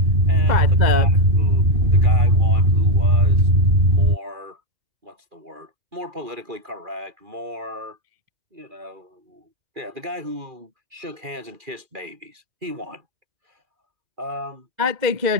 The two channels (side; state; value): left; late; 2.4 ms